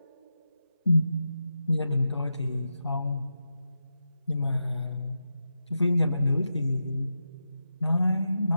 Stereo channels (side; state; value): both; inverted; correlation -0.89